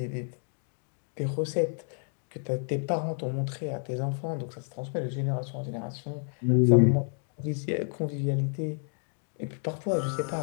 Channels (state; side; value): silent; right; 58 dB below the other